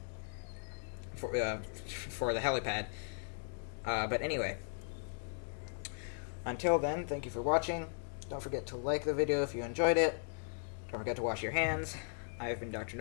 helipad. But anyway, until then, thank you for watching. Don't forget to like the video if you enjoyed it. Don't forget to wash your hands. I have been Dr.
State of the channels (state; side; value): silent; right; digital silence